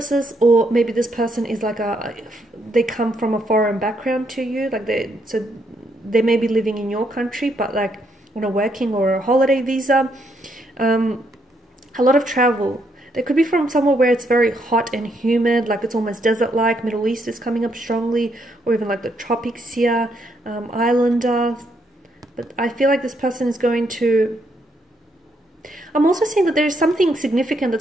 or maybe this person is like they come from a foreign background to you. So they may be living in your country, but like on a working or a holiday visa. A lot of travel. They could be from somewhere where it's very hot and humid, like it's almost desert-like. Middle East is coming up strongly, or even like the tropics here, islander. But I feel like this person is going to... I'm also seeing that there's something significant that's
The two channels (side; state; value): both; normal; correlation 0.75